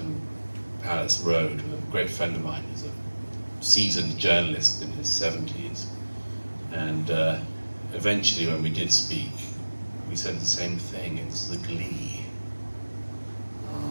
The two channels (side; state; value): both; inverted; correlation -1.00